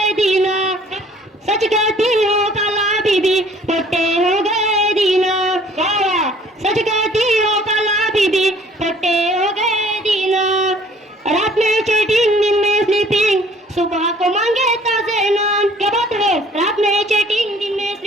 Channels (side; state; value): both; normal; correlation 0.55